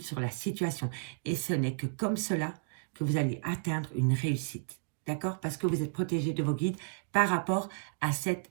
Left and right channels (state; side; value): silent; left; digital silence